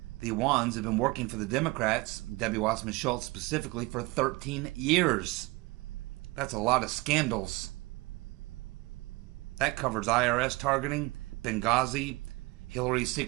The Awans have been working for the Democrats, Debbie Wasserman Schultz specifically, for 13 years. That's a lot of scandals. That covers IRS targeting, Benghazi, Hillary's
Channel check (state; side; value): quieter; left; 23.2 dB